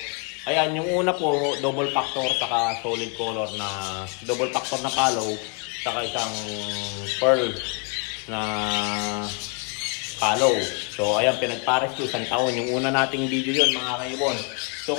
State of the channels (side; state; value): right; quieter; 34.7 dB